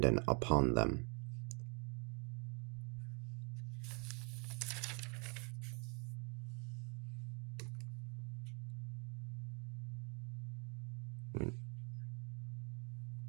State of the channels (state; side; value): quieter; left; 35.5 dB